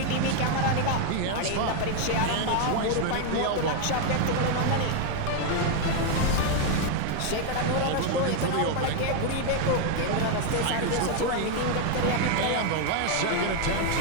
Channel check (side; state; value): both; different; correlation 0.00